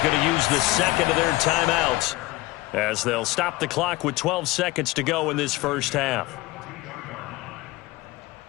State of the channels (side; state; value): right; quieter; 20.2 dB